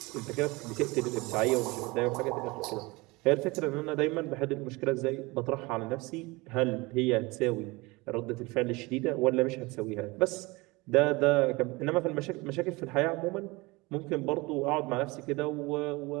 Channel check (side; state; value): left; quieter; 23.7 dB